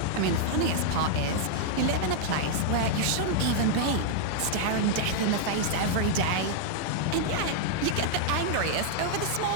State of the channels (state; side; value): different; both; correlation -0.01